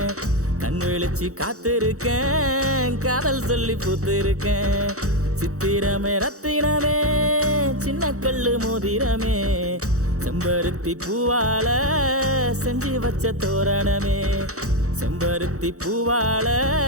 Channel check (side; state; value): left; late; 0.65 ms